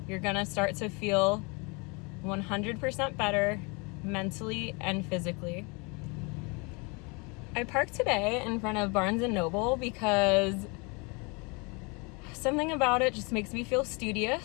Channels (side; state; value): right; quieter; 30.3 dB